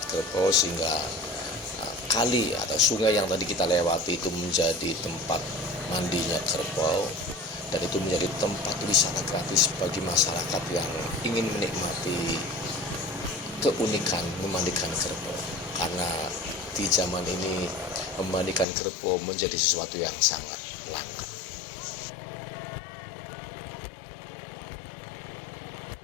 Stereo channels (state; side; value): drops out; right; at 18.7 s